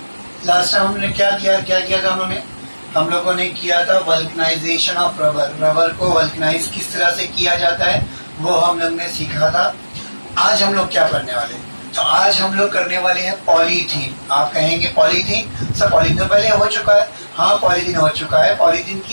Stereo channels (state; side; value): inverted; both; correlation -1.00